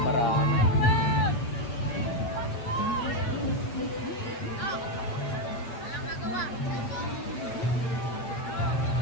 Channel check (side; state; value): right; late; 8.1 ms